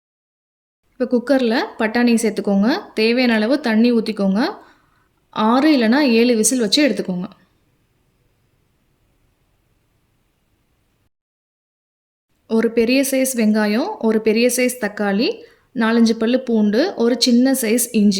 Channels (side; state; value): both; identical; correlation 1.00